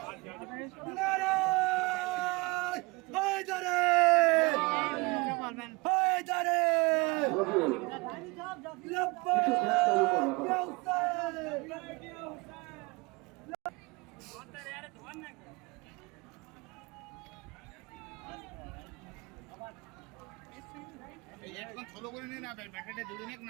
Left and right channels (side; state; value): left; quieter; 26.0 dB